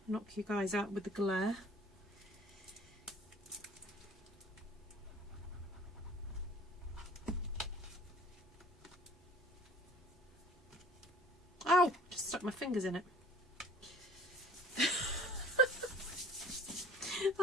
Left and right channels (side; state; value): both; normal; correlation 0.50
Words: knock you guys out with the glare. Ow! Just stuck my fingers in it.